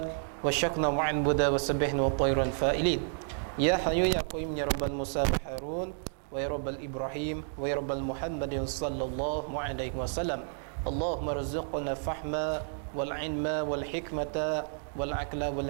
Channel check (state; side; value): silent; left; digital silence